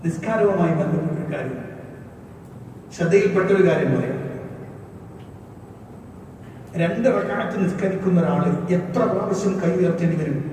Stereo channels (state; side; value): identical; both; correlation 1.00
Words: നിസ്കാരവുമായി ബന്ധപ്പെട്ട കാര്യം, ശ്രദ്ധയിൽപ്പെട്ടൊരു കാര്യം പറയാം. 2 റക്അത്ത് നിസ്കരിക്കുന്ന ഒരാള് എത്ര പ്രാവശ്യം കൈ ഉയർത്തേണ്ടി വരും?